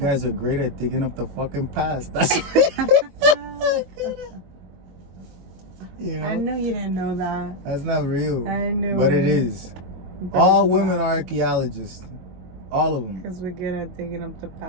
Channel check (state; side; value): late; left; 22 ms